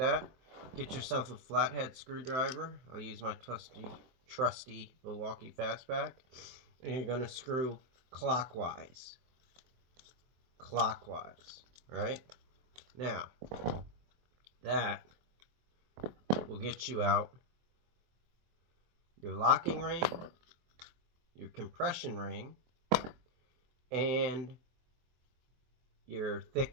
Get yourself a flathead screwdriver. I'll use my trusty Milwaukee Fastback. And you're going to screw clockwise. Right? Now, that will get you out your locking ring, your compression ring, and your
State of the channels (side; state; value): left; late; 23 ms